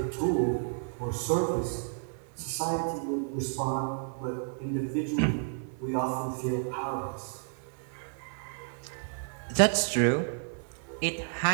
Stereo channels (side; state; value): left; silent; 57 dB below the other